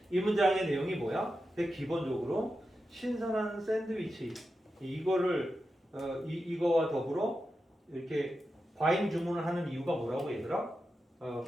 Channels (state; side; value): normal; both; correlation 0.90